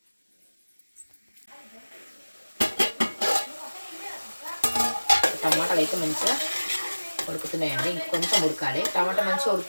టమాటాలు అయితే మంచిగా ఉడుకుతున్నాయండి. ఇంకొంచెం ఉడకాలి. టమాటా మంచిగా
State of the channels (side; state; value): both; inverted; correlation -1.00